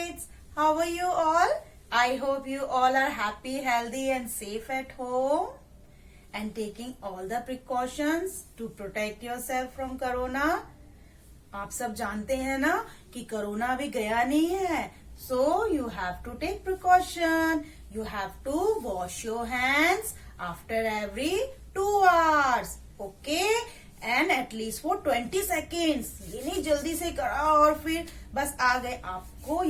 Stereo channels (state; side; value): identical; both; correlation 1.00